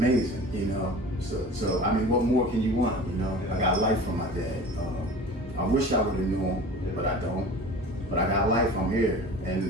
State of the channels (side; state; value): both; normal; correlation 0.39